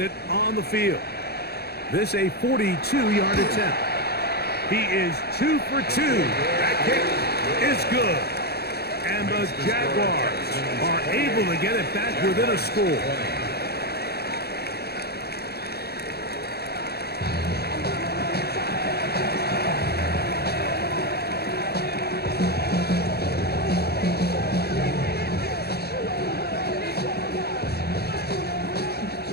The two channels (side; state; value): right; late; 0.47 ms